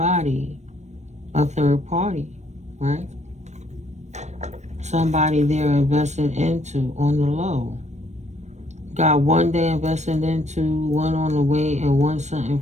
a third party, right? Somebody they're investing into on the low. Got one day investing into, one on the way, and one something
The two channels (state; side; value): late; left; 0.34 ms